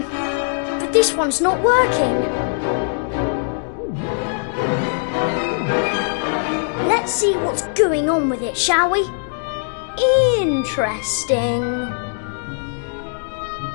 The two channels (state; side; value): silent; right; digital silence